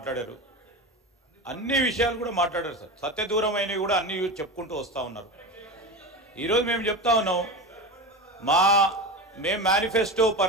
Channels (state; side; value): normal; both; correlation 0.24